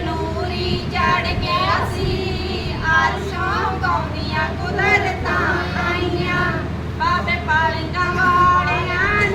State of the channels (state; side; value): identical; both; correlation 1.00